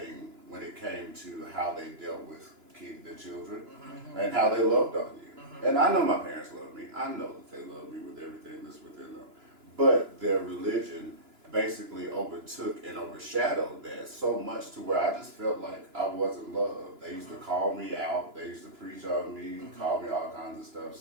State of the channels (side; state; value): left; late; 2.9 ms